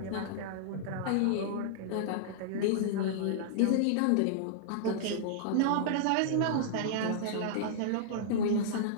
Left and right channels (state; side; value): different; both; correlation -0.02